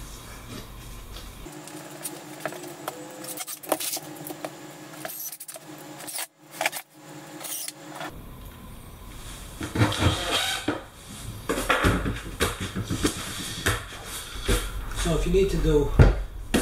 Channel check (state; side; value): identical; both; correlation 1.00